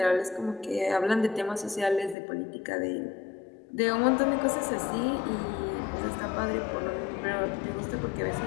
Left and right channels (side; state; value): right; drops out; at 2.1 s